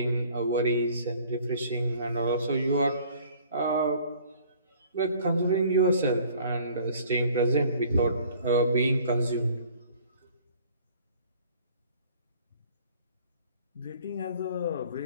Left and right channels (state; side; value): inverted; both; correlation -0.53